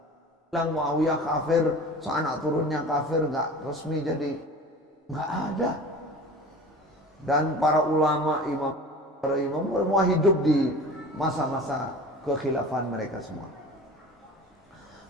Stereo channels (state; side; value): normal; both; correlation 0.38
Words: Bilang Muawiyah kafir, anak turunnya kafir, nggak resmi jadi nggak ada. Dan para ulama, para imam semua hidup di masa-masa kekhilafan mereka semua.